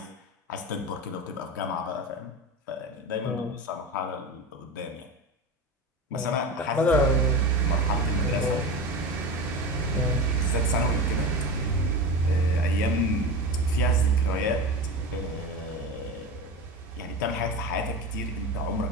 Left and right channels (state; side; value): normal; both; correlation 0.26